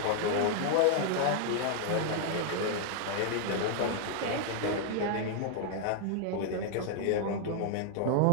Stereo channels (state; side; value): different; both; correlation 0.00